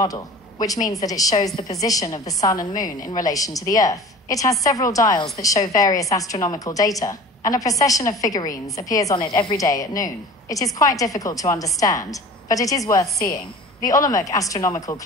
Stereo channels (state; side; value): normal; both; correlation 0.41